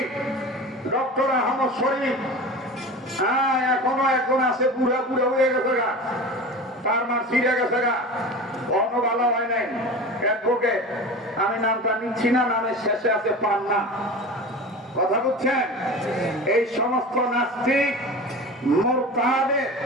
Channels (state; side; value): normal; both; correlation 0.33